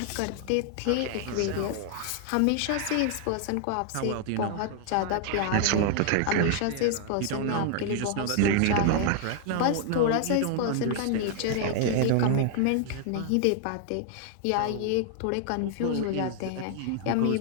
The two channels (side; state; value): both; different; correlation 0.00